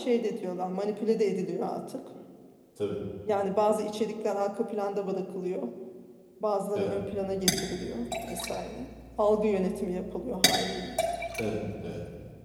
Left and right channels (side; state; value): both; identical; correlation 1.00